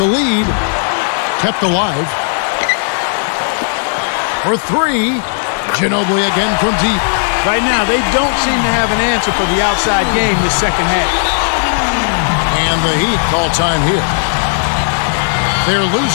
lead. Kept alive. For 3. Ginobili again from deep. Right now, they don't seem to have an answer for the outside game this second half. And the Heat call time here. They're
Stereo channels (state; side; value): silent; right; digital silence